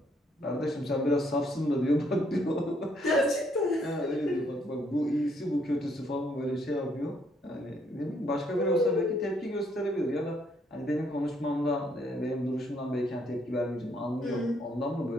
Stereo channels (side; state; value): both; normal; correlation 0.70